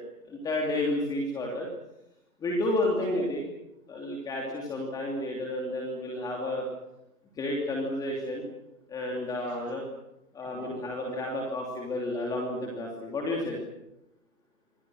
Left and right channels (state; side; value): normal; both; correlation 0.46